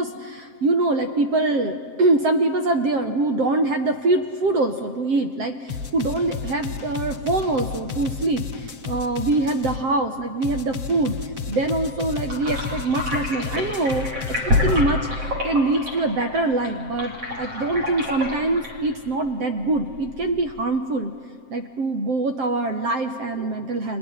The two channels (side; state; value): left; late; 7.6 ms